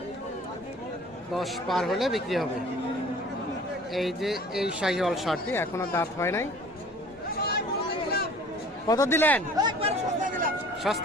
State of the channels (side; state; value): both; normal; correlation 0.48